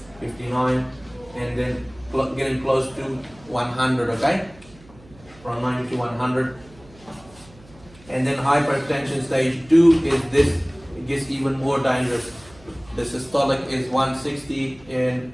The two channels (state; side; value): noise; right; hum, 24 dB below the sound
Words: and then getting close to 100, okay? From 90 to 100. And then hypertension stage 2 is this, it gets even more dangerous. The systolic is 160 and